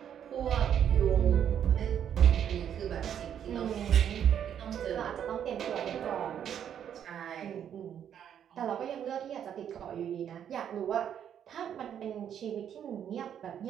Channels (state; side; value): quieter; left; 9.2 dB